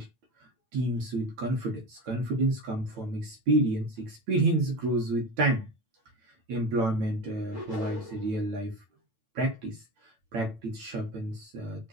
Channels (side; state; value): left; late; 8.9 ms